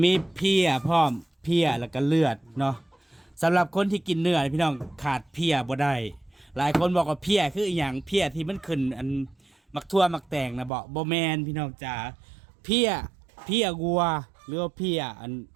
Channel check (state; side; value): drops out; left; at 10.7 s